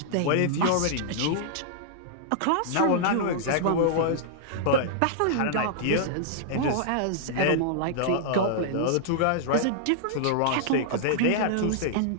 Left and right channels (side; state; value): both; different; correlation -0.01